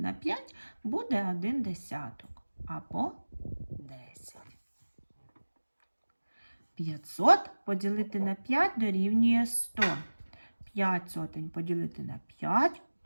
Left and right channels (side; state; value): both; inverted; correlation -1.00